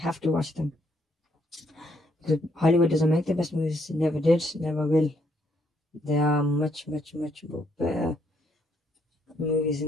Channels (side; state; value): both; normal; correlation 0.72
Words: to watch them. Because Hollywood doesn't make the best movies, never did, never will. There are much, much, much better movies